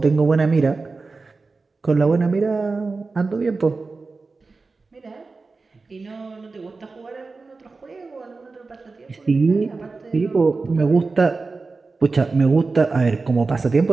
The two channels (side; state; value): left; quieter; 4.0 dB